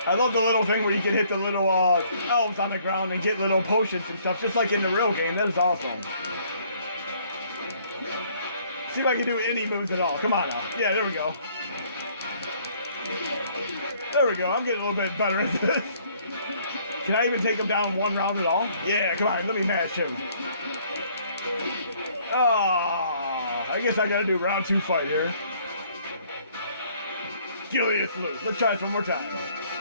I love the little thing where you can hit the little elves on the ground and get little potions and stuff, just like in the real game. That is awesome. See if I can do any moves at all. Come on now. Yeah, there we go. There we go. I'm getting a little bit better at this. Can I even take him down one round at all? Yeah, come on. Let me mash him. Oh, I guess I gotta do round 2 fight here. Gilius loose. Let's try this one more time.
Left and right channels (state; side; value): inverted; both; correlation -0.62